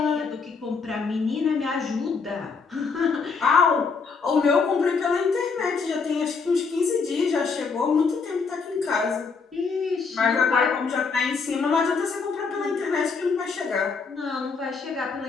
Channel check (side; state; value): right; quieter; 5.0 dB